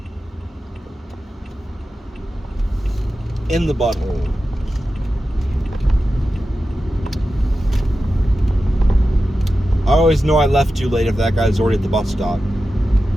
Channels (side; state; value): both; normal; correlation 0.92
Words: In the butthole. I always know I left too late if that guy's already at the bus stop.